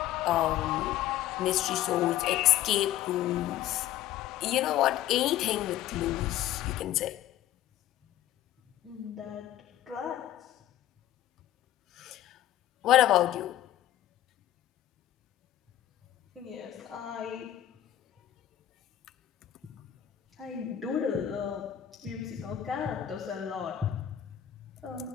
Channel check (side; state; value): right; quieter; 12.4 dB